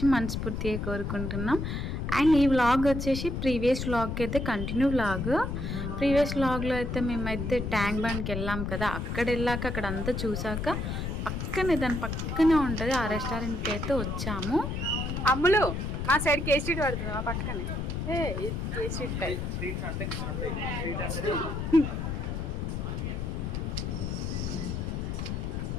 మనస్ఫూర్తిగా కోరుకుంటున్నాం. అండ్ ఈ వ్లాగ్ వచ్చేసి ప్రీవియస్ వ్లాగ్కి అయితే కంటిన్యూ వ్లాగ్. ప్రీవియస్ వ్లాగ్లో అయితే మేమైతే ట్యాంక్ బండ్కి వెళ్ళాం కదా, అక్కడ వెళ్ళాక అక్కడ అంతా చూసాక దాని పక్కనే ఉంటుంది ఆ రెస్టారెంట్కి అయితే వచ్చాము. అమ్ములు మా సైడ్ కేసీ స్ట్రీట్ పడుతుంది, మా పక్కనే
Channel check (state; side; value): noise; left; rumble, 3 dB below the sound